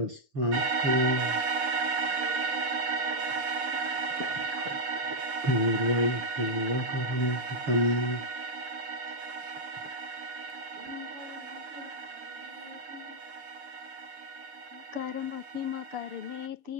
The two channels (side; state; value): left; late; 6.9 ms